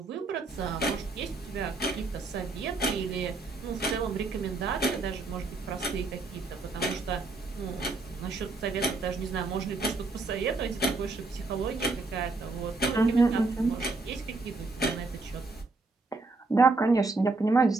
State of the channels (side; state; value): left; quieter; 3.5 dB